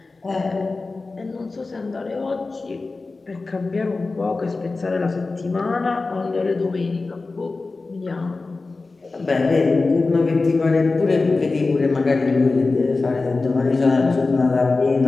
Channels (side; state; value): right; quieter; 3.7 dB